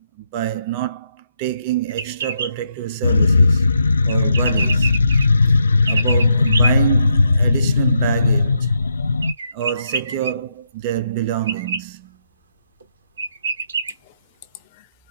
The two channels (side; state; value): both; inverted; correlation -0.79